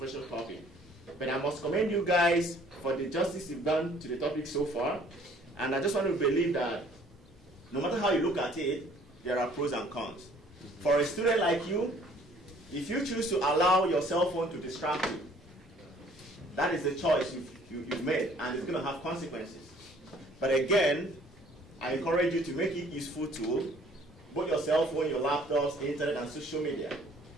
topic. But I must commend you guys for the justice you've done to the topic so far. And I just want to believe that no matter how you look at it, there are pros and cons. For a student like you, if you choose to allow your cell phone to distract you, that is the choice you've made, and it's going to have consequences. But again, I encourage you to make it a useful tool, both your cell phone, your laptops, internet, and social media.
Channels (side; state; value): both; normal; correlation 0.57